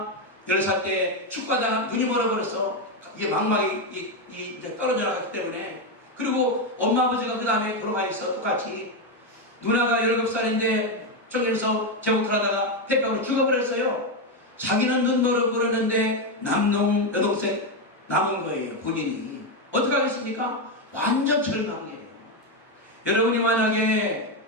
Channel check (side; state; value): both; normal; correlation 0.07